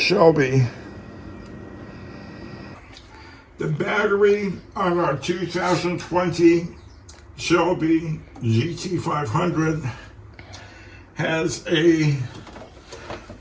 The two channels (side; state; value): both; identical; correlation 1.00